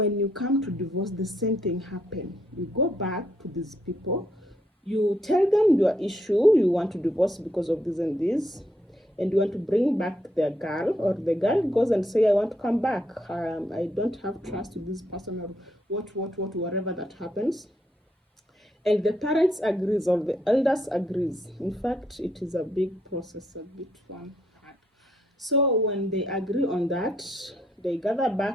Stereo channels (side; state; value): both; normal; correlation 0.75